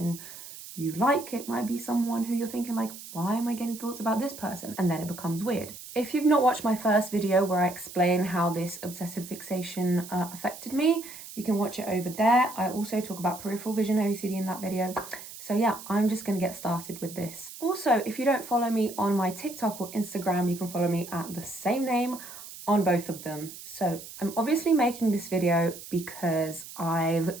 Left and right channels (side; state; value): right; noise; hiss, 14 dB below the sound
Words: you like, it might be someone who you're thinking like, why am I getting thoughts about this person? And then it becomes weird. If you've not watched my first video where I explain how this obsessive fixation affected me, you can watch it over there. I also talk about peripheral vision OCD in that video. So yeah, I'm just going to get started with this. Also, if you don't follow me on my TikTok or Instagram, you can follow me at the same name on both of them. So I'm obviously making this video because I've